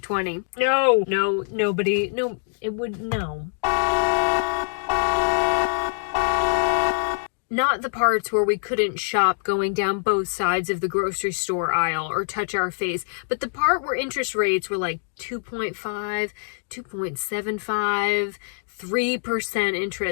No, nobody, no, it would, no. Not the parts where we couldn't shop going down both sides of the grocery store aisle or touch our face, but the part where interest rates were like 2.5, 2.75, 3%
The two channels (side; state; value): right; silent; digital silence